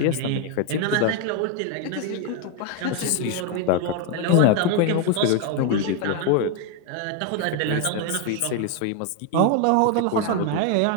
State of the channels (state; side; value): different; both; correlation 0.01